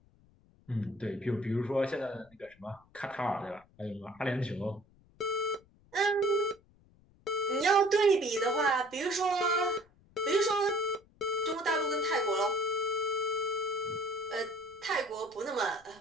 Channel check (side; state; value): left; noise; rumble, 30 dB below the sound